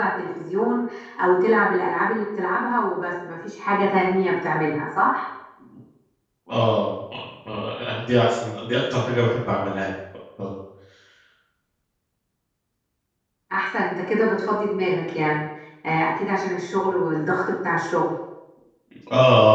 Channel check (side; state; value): both; identical; correlation 1.00